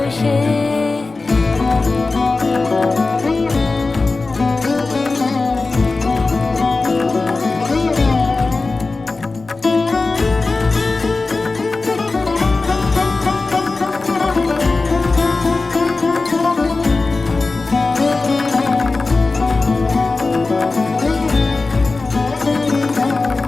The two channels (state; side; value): quieter; right; 3.7 dB